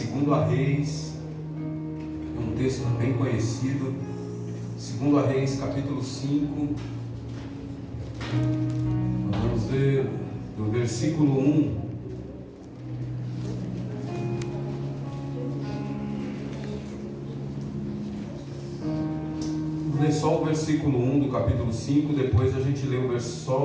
Reis, é um texto bem conhecido, 2 Reis capítulo 5, nós vamos ver do versículo 1. Vamos ler só o versículo 1 do capítulo 5, depois a gente lê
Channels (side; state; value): both; identical; correlation 1.00